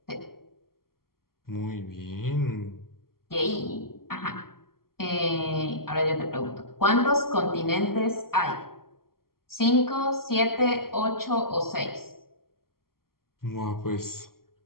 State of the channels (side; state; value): right; late; 0.92 ms